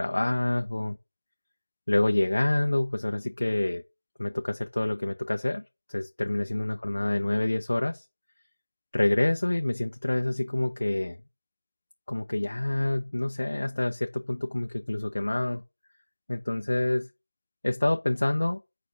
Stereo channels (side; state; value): both; inverted; correlation -1.00